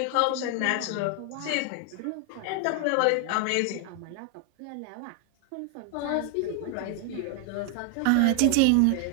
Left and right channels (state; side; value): different; both; correlation 0.00